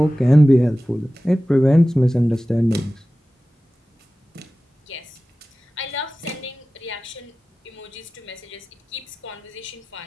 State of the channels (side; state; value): both; normal; correlation 0.96